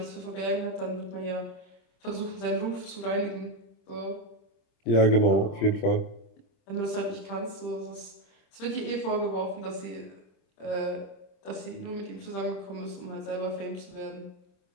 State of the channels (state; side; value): late; right; 25 ms